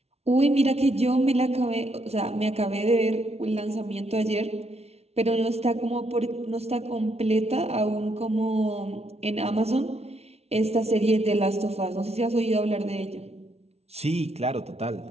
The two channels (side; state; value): left; late; 0.31 ms